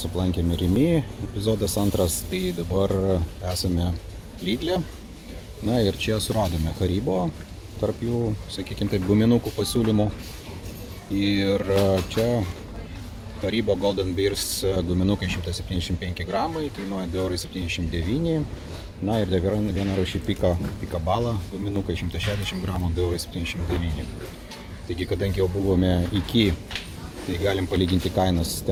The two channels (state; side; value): identical; both; correlation 1.00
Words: aplankėme Rimi, epizodas antras, tai dabar esame Lidle. Na ir čia suradome Haribo, tarp jų, sakykime taip, guminukų pasiūlymų. Ir čia Haribo Golden Bears guminukai 175 gramai, kainuoja 2,79 €. Na ir dar viena rūšį Pika Bala, guminukai 160 gramų, 2,79 €. Taigi, kadangi jau buvome iki, tai galim palyginti kainas.